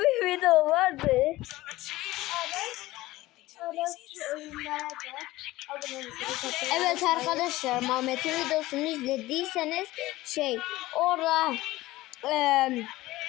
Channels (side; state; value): right; quieter; 17.9 dB